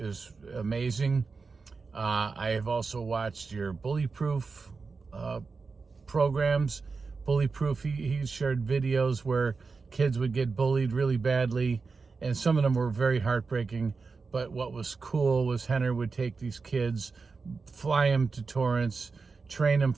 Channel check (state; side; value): quieter; left; 4.6 dB